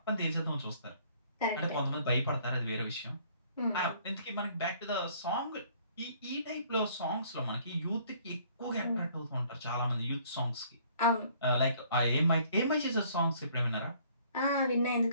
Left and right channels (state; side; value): inverted; both; correlation -0.59